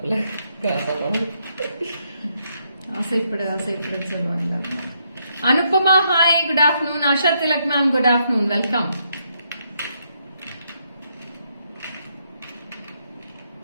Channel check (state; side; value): inverted; both; correlation -0.76